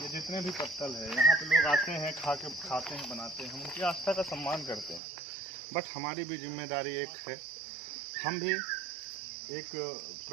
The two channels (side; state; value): left; drops out; at 5.0 s